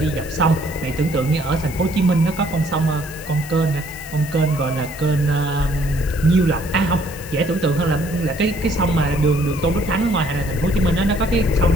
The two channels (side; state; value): left; noise; hiss, 16 dB below the sound